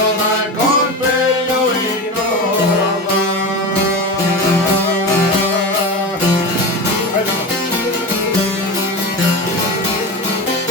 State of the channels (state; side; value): normal; both; correlation 0.24